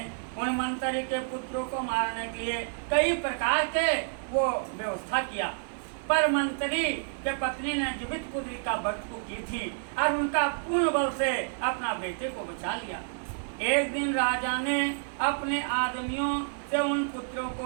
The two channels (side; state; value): left; silent; digital silence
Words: उन मंत्री के पुत्रों को मारने के लिए कई प्रकार के वो व्यवस्था किया, पर मंत्री के पत्नी ने जीवित पुत्री का वध को की थी और उनका पूर्ण बल से अपना बेटे को बचा लिया। एक दिन राजा ने अपने आदमियों से उन पुत्रों